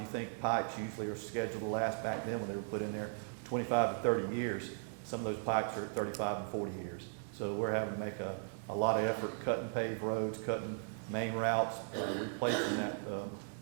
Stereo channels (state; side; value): silent; left; digital silence